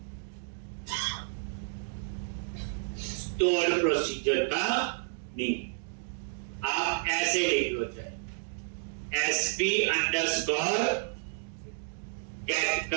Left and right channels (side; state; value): left; silent; digital silence